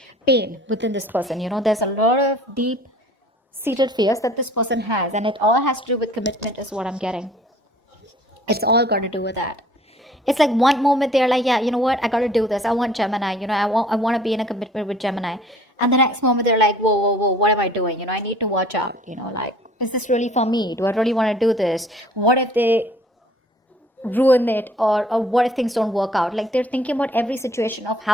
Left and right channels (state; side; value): normal; both; correlation 0.53